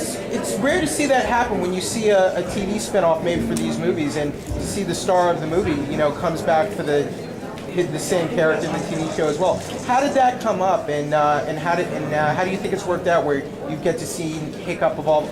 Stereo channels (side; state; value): both; identical; correlation 1.00